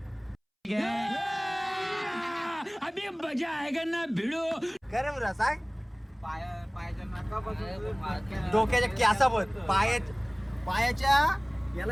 अभी मजा आएगा ना भिडो का रे बुरा सांग. डोक्याच्या कॅसाबत पायाच्या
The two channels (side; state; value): both; identical; correlation 1.00